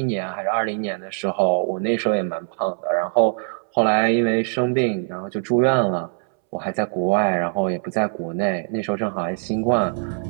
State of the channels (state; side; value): silent; left; 64 dB below the other